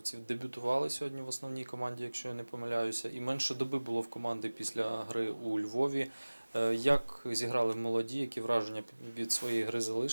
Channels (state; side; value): inverted; both; correlation -1.00